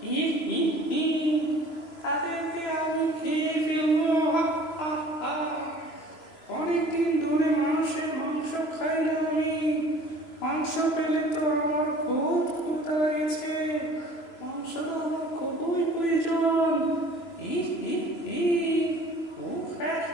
ই, ই, ই, তাদেরকে আমি খেয়ে ফেলবো। হা, হা, হা। অনেকদিন ধরে মানুষের মাংস খাই না আমি। মাংস পেলে তো আমার খুব ক্ষুধা লেগেছে। মাংস তো আমার খুবই প্রয়োজন। ই, ই, ই, উফ, হ্যাঁ,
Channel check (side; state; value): right; late; 3.0 ms